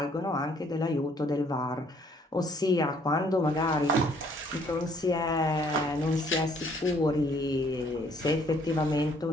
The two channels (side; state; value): both; normal; correlation 0.63